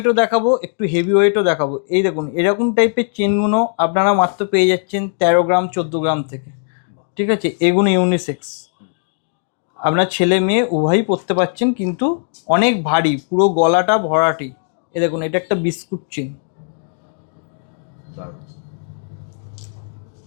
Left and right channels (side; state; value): right; silent; digital silence